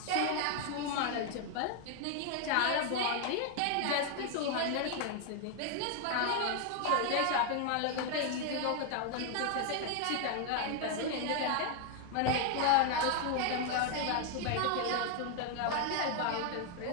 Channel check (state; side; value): different; both; correlation 0.00